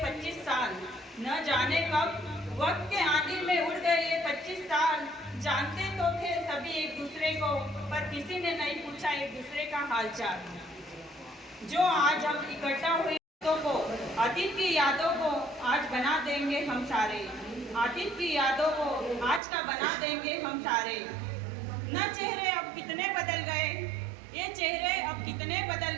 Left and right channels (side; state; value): left; drops out; at 19.4 s